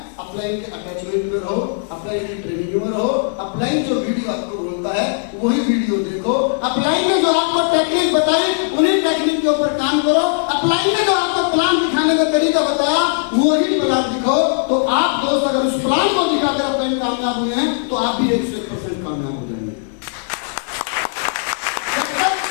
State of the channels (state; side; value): silent; right; digital silence